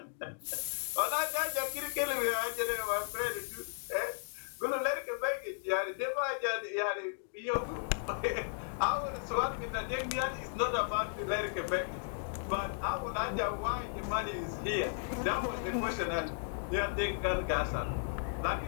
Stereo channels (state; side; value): silent; right; digital silence